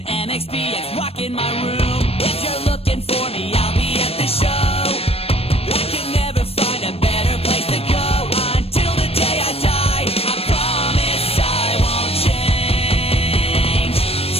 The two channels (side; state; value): right; late; 0.28 ms